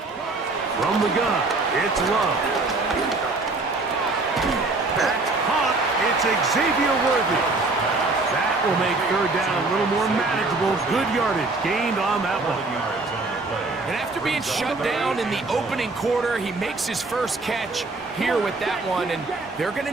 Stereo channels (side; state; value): left; quieter; 3.4 dB